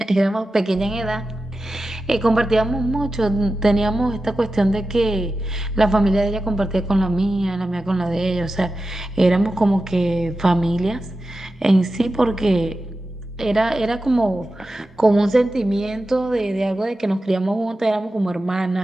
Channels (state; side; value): normal; both; correlation 0.92